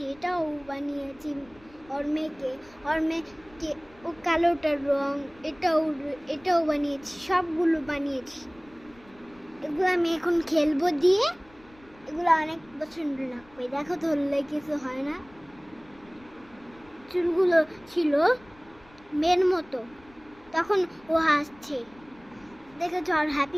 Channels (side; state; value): left; noise; rumble, 26 dB below the sound